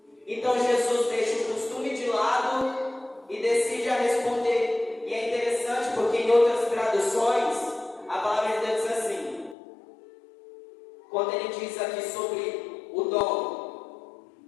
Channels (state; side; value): drops out; right; at 9.6 s